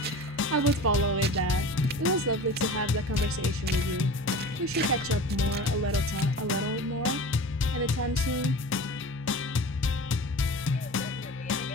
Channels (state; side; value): normal; both; correlation 0.36